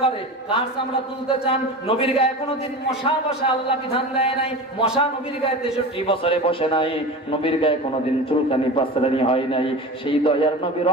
করে। কার চামড়া তুলতে চান? নবীর গায়ে কোনোদিন মশা বসা আল্লাহ বিধান দেয় নাই, মশা নবীর গায়ে 63 বছরে বসে নাই, নবীর গায়ে কোনোদিন চুলকানি পাসরানি হয় নাই। সেই দয়ার নবী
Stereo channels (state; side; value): normal; both; correlation 0.31